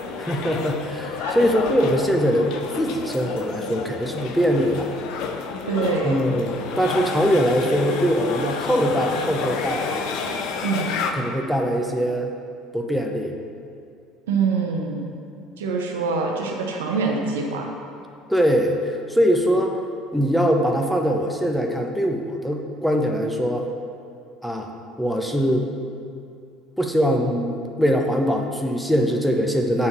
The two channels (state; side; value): normal; both; correlation 0.68